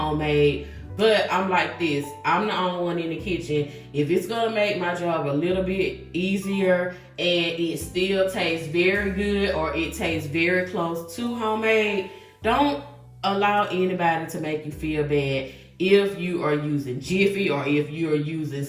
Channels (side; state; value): both; identical; correlation 1.00